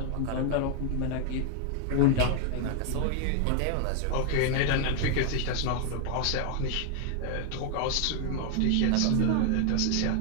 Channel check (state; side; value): different; both; correlation 0.00